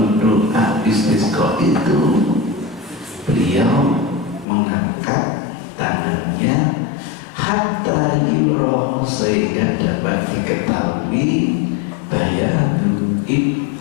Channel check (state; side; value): drops out; right; at 4.5 s